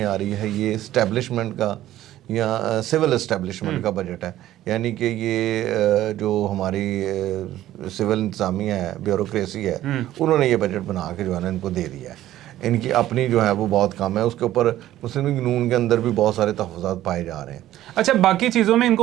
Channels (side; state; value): left; quieter; 13.7 dB